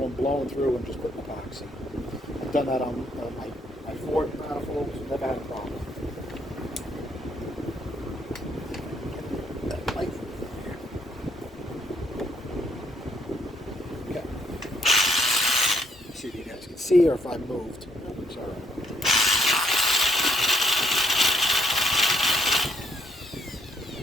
blowing through and just putting epoxy. I've done that on my Ford manifolds, never had a problem. See, or if I moved. Sorry.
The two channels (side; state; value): both; normal; correlation 0.71